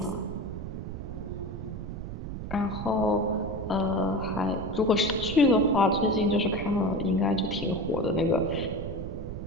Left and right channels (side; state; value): right; noise; rumble, 7 dB below the sound